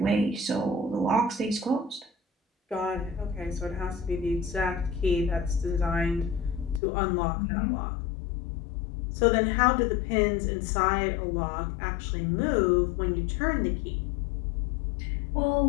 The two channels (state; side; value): drops out; right; at 6.8 s